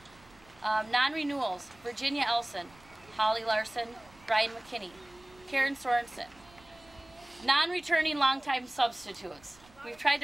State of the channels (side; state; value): right; noise; rumble, 26 dB below the sound